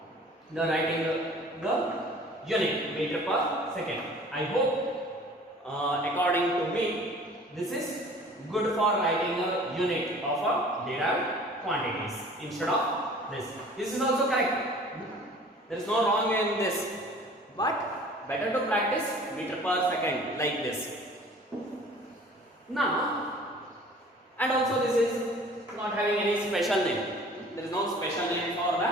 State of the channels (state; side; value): normal; both; correlation 0.48